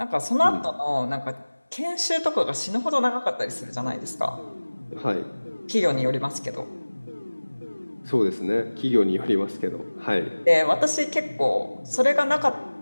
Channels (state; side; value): inverted; both; correlation -1.00